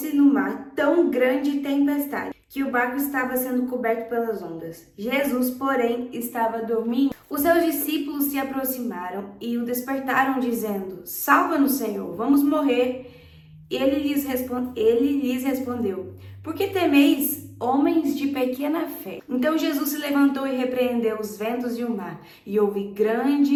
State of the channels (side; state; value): both; identical; correlation 1.00